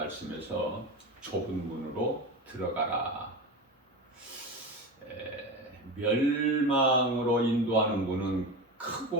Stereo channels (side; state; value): both; normal; correlation 0.24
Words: 좁은 문으로 들어가라. 멸망으로 인도하는 문은